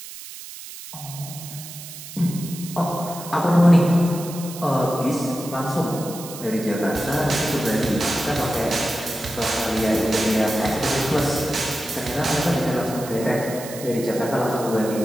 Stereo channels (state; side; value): noise; right; hiss, 13 dB below the sound